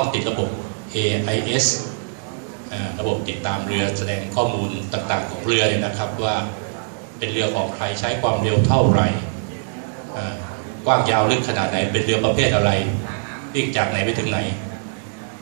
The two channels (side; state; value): left; silent; digital silence